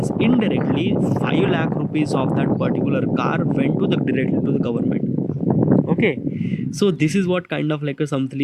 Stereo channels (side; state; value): both; identical; correlation 1.00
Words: indirectly 5 lakh rupees of that particular car went to the directly to the government. Okay, so this is what kind of like a